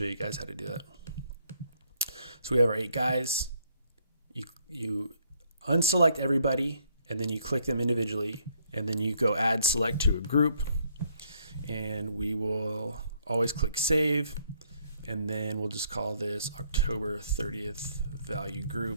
you guys how to do that. So we have our 8 guys. You unselect everybody, and then you click them individually, and then you go add select to a group, and we will always click save, and then we'll just call this October 30th value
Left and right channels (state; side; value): inverted; both; correlation -0.68